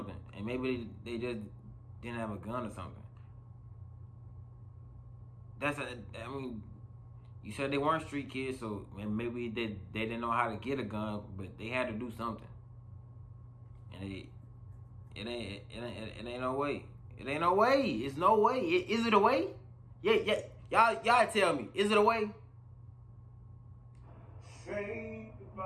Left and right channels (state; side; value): identical; both; correlation 1.00